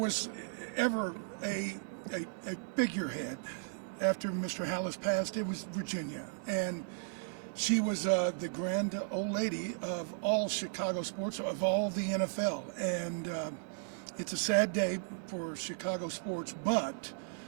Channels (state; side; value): silent; left; digital silence